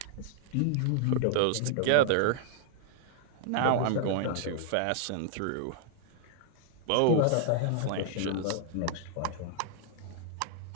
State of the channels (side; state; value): both; different; correlation -0.01